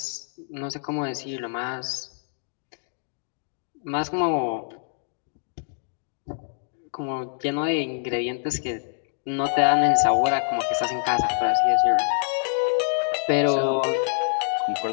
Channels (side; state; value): right; silent; digital silence